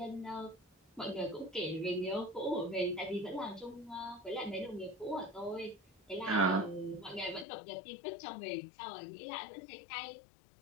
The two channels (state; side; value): drops out; right; at 7.5 s